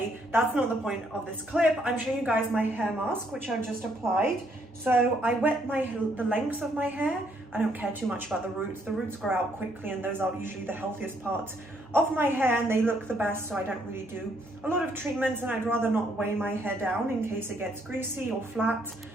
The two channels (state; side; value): normal; both; correlation 0.70